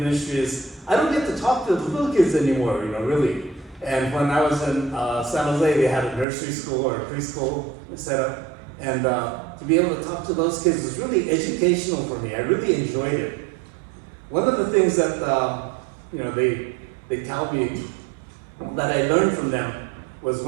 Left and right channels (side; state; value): left; drops out; at 6.2 s